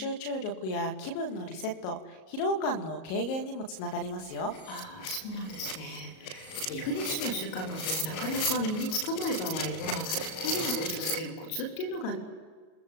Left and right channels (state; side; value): late; right; 38 ms